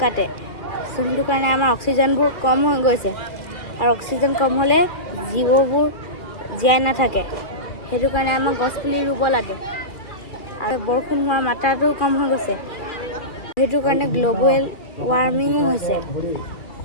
কাটে। যোনটো কাৰণে আমাৰ অক্সিজেনবোৰ কম হৈ গৈছে। আৰু অক্সিজেন কম হ'লে জীৱবোৰ জীয়াই নাথাকে। সেইটো কাৰণে আমাৰ গছ পুলি ৰুব লাগে। আৰু বৰষুণ হোৱা মাত্ৰাটো কম হৈ গৈছে। সেইটো কাৰণে গ্লোবেল ৱাৰ্মিং হৈছে।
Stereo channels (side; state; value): right; late; 2.3 ms